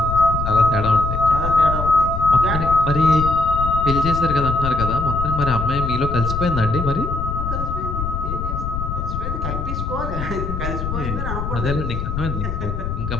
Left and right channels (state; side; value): noise; left; rumble, 4 dB below the sound